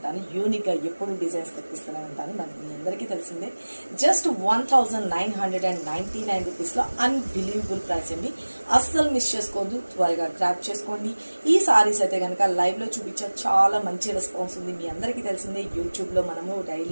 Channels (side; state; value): both; inverted; correlation -1.00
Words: యూనిక్ గా ఎప్పుడు డిజైన్స్ తెప్పిస్తూనే ఉంటాను. మనకి మీ అందరికీ తెలిసిందే. జస్ట్ 1999 రూపీస్ లో అన్బిలీవబుల్ ప్రైస్ అండి. అస్సలు మిస్ చేసుకోవద్దు, త్వరగా గ్రాప్ చేసుకోండి. ఈ సారీస్ అయితే కనుక లైవ్ లో చూపించే చాలా మంచి రెస్పాన్స్ ఉంది. మీ అందరికీ తెలిసిందే, యూట్యూబ్ లో మనము